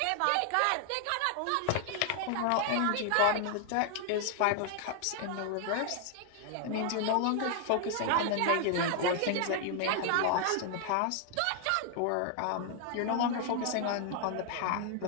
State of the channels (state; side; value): different; both; correlation 0.00